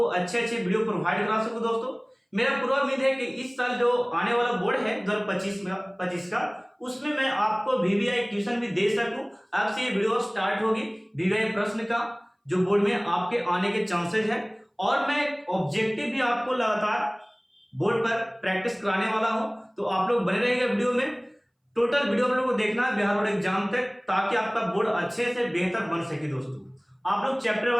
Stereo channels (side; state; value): both; identical; correlation 1.00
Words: अच्छे वीडियो प्रोवाइड करा सकूं। दोस्तों, मेरा पूरा उम्मीद है कि इस साल जो आने वाला बोर्ड है 2025 का, उसमें मैं आपको वीवीआई ट्यूशन भी दे सकूं। अब से ये वीडियो स्टार्ट होगी वीवीआई प्रश्न का, जो बोर्ड में आपके आने के चांसेस है, और मैं ऑब्जेक्टिव भी आपको लगातार बोर्ड पर प्रैक्टिस कराने वाला हूं। तो आप लोग बने रहिएगा वीडियो में। टोटल वीडियो आप लोग को देखना है बिहार बोर्ड एग्जाम तक, ताकि आपका बोर्ड अच्छे से बेहतर बन सके। दोस्तों, आप लोग चैप्टर